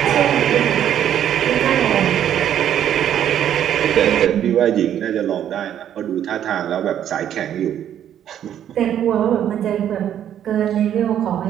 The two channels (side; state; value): left; quieter; 10.2 dB